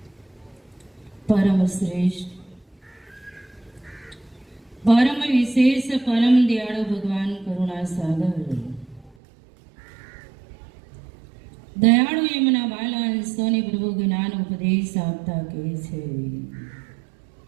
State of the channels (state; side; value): drops out; left; at 9.2 s